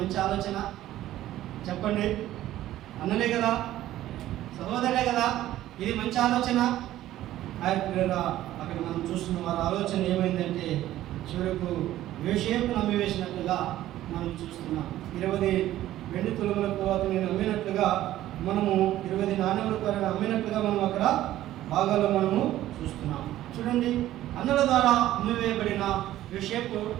ఆలోచన చెప్పండి. అన్నలే కదా, సహోదరులే కదా, ఇది మంచి ఆలోచన. అక్కడ మనం చూస్తున్న వారి ఆలోచన ఏమైందంటే చివరకు యోసేపు నమ్మివేసినట్లుగా మనం చూస్తున్నాం. 20 వెండి తులములకు అతను నమ్మినట్లుగా, మనము 20 నాణ్యములకు అమ్మినట్లుగా మనం అక్కడ భాగాల్లో మనము చూస్తున్నాం. చూడండి, అన్నల ద్వారా అమ్మివేయబడిన యోసేపు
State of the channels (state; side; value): quieter; left; 14.0 dB